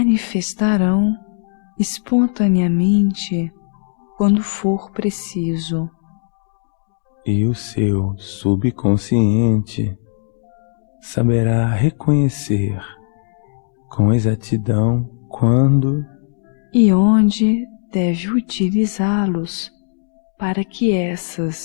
espontaneamente quando for preciso. e o seu subconsciente saberá reconhecer com exatidão quando E onde deve utilizá-los para que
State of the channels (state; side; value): silent; right; digital silence